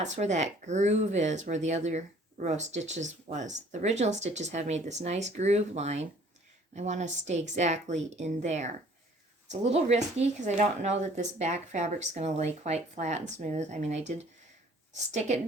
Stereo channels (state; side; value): normal; both; correlation 0.55